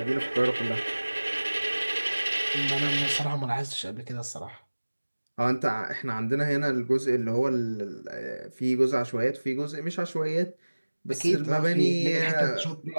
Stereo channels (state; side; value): inverted; both; correlation -1.00